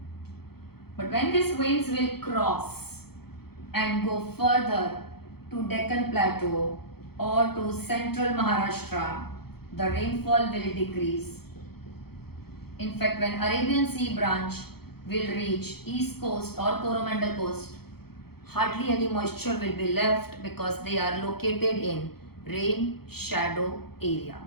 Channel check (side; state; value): right; late; 0.96 ms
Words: But when these winds will cross and go further to Deccan Plateau or to central Maharashtra, the rainfall will decrease. In fact, when Arabian Sea branch will reach east coast or Coromandel coast, hardly any moisture will be left because they are located in rain shadow area.